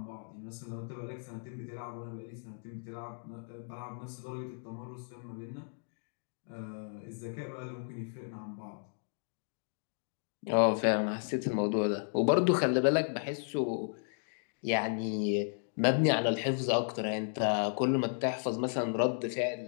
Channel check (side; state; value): right; silent; digital silence